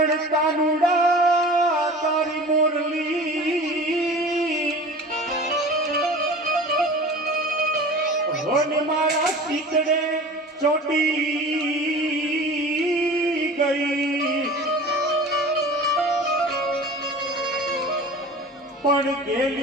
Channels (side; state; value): both; normal; correlation 0.39